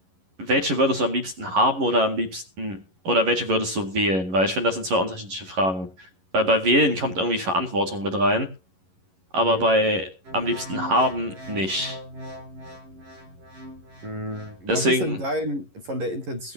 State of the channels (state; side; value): late; left; 11 ms